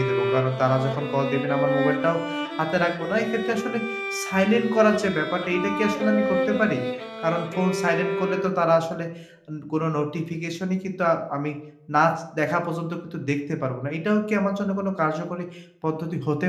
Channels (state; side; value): identical; both; correlation 1.00